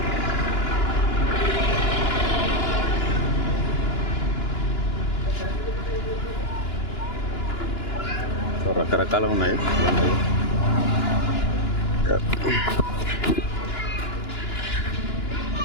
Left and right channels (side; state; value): right; late; 2.9 ms